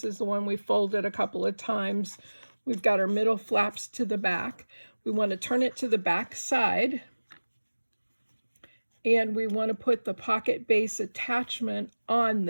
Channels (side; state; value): both; inverted; correlation -1.00